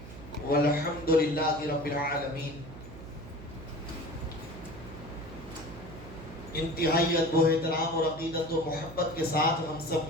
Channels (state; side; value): noise; right; hum, 14 dB below the sound